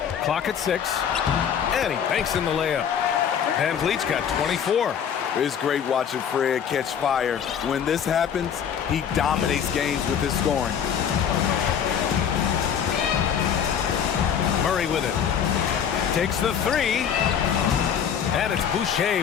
Clock at 6. And he banks in the layup. Van Vliet's got 24. It's great watching Fred catch fire. When this happens, he dominates games with his scoring. Murray with it. Takes the three. And it's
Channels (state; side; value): quieter; right; 8.2 dB